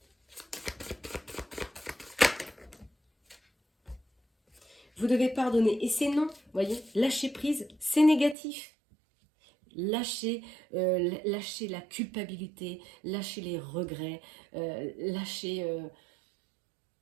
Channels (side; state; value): left; drops out; at 8.3 s